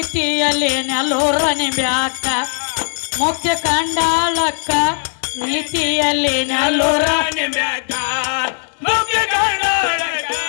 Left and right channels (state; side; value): silent; right; digital silence